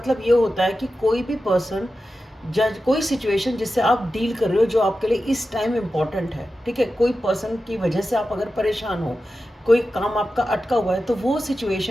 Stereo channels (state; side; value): normal; both; correlation 0.92